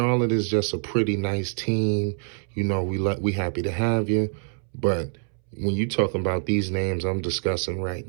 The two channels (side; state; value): left; silent; 61 dB below the other